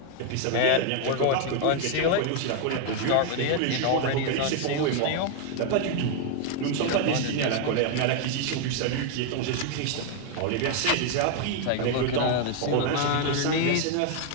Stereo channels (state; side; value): different; both; correlation 0.00